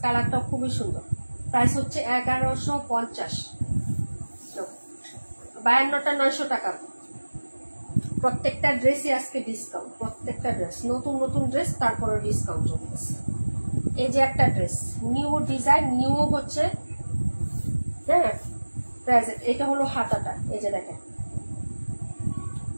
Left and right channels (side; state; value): both; inverted; correlation -1.00